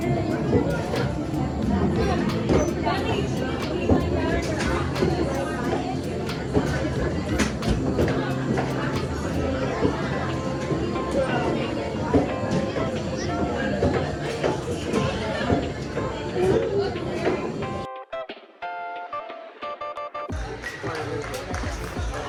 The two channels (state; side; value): identical; both; correlation 1.00